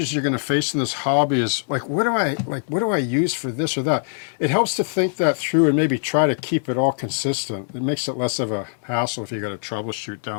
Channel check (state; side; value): silent; right; digital silence